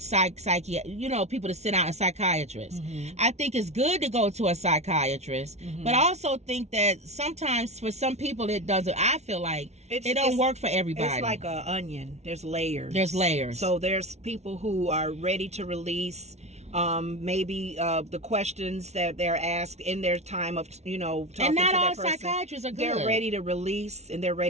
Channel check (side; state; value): left; late; 0.32 ms